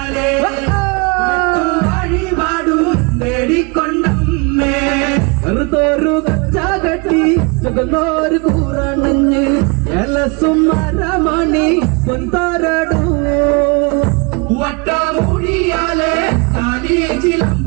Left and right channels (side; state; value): left; quieter; 30.7 dB